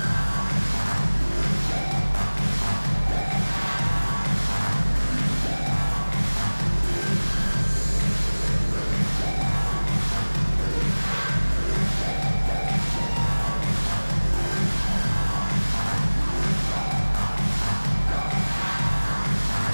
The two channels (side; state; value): both; inverted; correlation -1.00